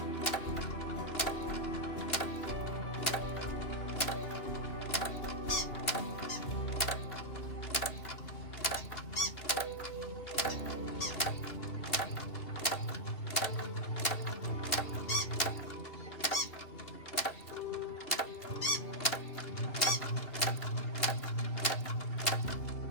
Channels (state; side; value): late; right; 2.8 ms